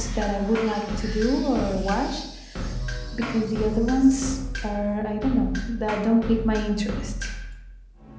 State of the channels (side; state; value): both; identical; correlation 1.00